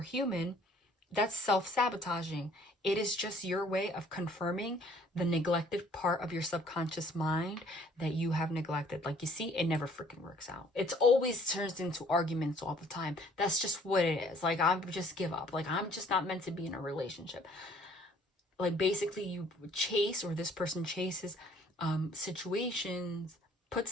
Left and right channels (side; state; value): both; normal; correlation 0.58